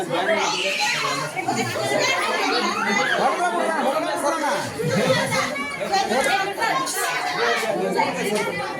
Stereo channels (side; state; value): both; identical; correlation 1.00